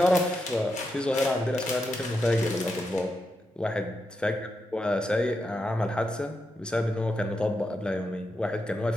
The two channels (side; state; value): both; normal; correlation 0.85